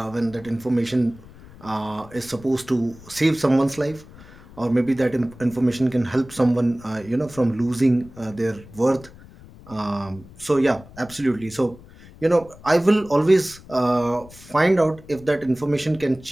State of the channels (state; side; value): noise; left; rumble, 21 dB below the sound